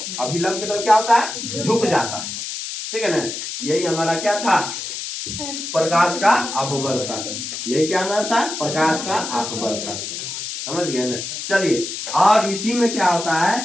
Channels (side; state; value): left; noise; hiss, 6 dB below the sound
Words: अभिलंब की तरफ क्या होता है, झुक जाता है, ठीक है ना। यही हमारा क्या था, प्रकाश का अपवर्तन, यही क्या हमारा था, प्रकाश का अपवर्तन, समझ गए ना। चलिए, और इसी में क्या होता